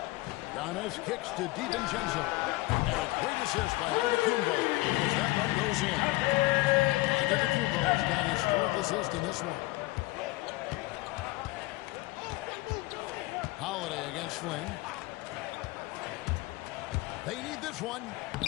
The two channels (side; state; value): right; quieter; 20.4 dB